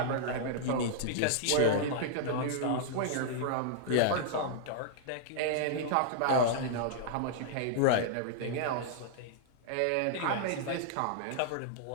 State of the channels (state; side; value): different; both; correlation -0.01